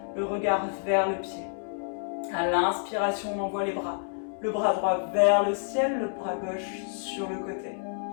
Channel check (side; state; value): right; silent; digital silence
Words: Le regard vers le pied. À l'inspiration, on envoie les bras. Le bras droit vers le ciel, le bras gauche sur le côté.